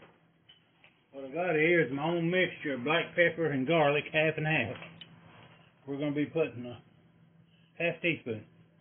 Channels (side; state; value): both; identical; correlation 1.00